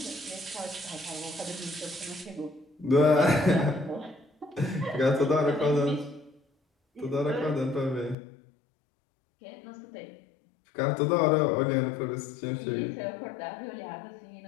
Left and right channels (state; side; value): drops out; right; at 8.2 s